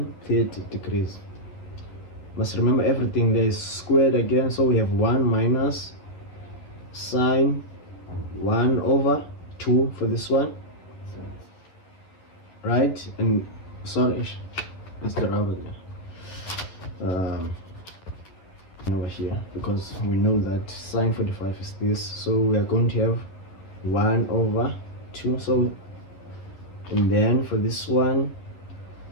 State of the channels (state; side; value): late; right; 11 ms